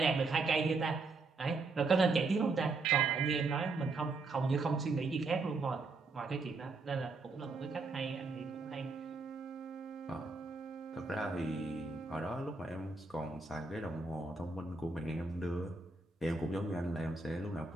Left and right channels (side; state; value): left; quieter; 3.7 dB